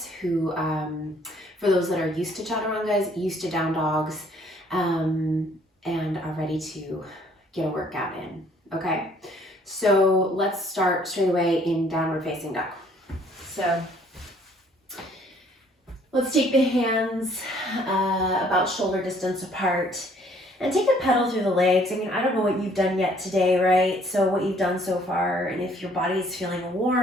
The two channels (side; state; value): both; normal; correlation 0.61